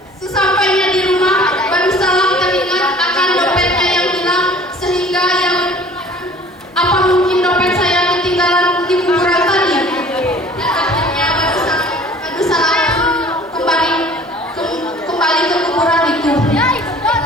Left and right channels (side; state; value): both; normal; correlation 0.49